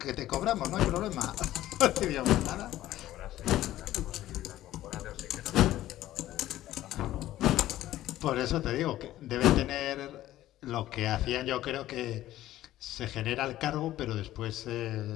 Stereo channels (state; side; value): quieter; right; 14.3 dB